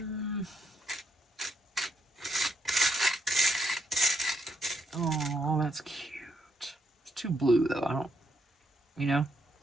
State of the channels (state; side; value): normal; both; correlation 0.76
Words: Oh, that's cute. It's too blue, though. I don't, you know?